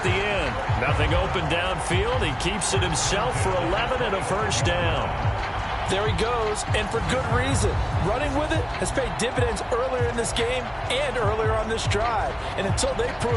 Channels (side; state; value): both; identical; correlation 1.00